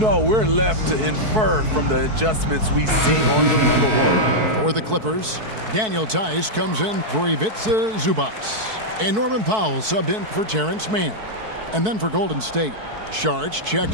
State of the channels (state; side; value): late; left; 4.6 ms